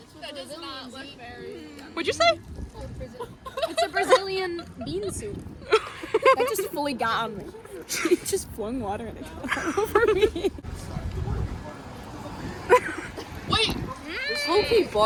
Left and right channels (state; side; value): identical; both; correlation 1.00